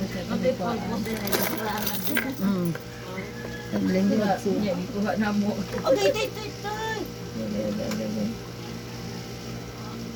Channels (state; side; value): identical; both; correlation 1.00